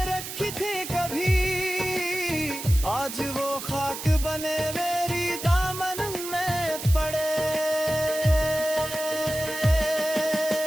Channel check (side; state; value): right; noise; hiss, 8 dB below the sound